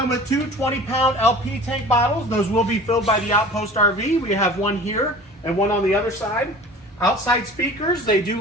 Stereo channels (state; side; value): normal; both; correlation 0.42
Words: with two 20-pound LP tank bottles. Those will be filled by the Outpost RV. We have one here and one on the other side. Outside speakers, they do